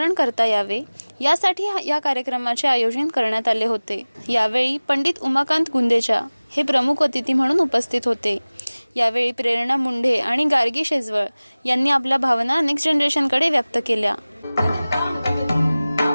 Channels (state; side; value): inverted; both; correlation -0.99